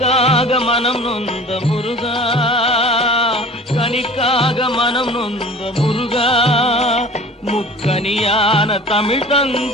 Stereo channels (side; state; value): both; normal; correlation 0.42